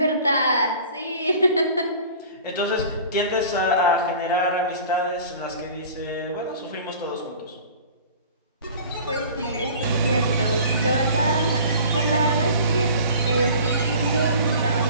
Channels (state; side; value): inverted; both; correlation -0.43